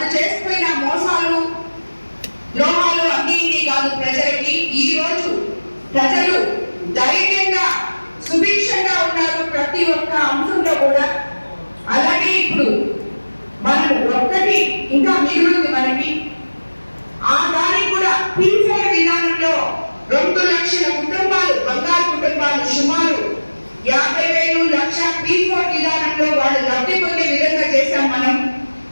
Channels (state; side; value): inverted; both; correlation -1.00